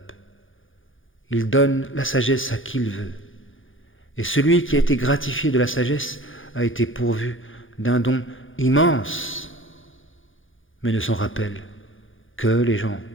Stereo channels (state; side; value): late; right; 0.58 ms